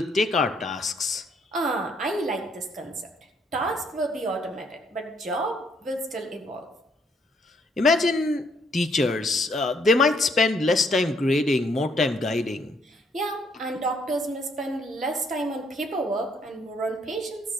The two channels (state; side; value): normal; both; correlation 0.68